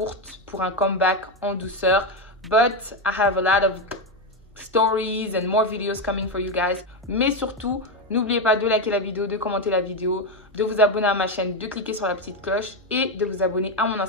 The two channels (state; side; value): normal; both; correlation 0.09